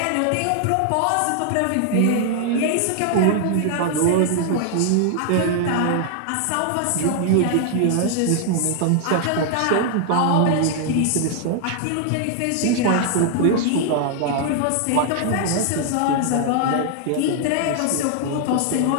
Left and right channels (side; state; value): both; different; correlation 0.00